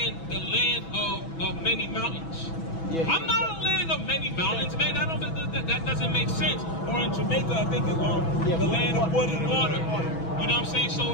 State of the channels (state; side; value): late; right; 6.1 ms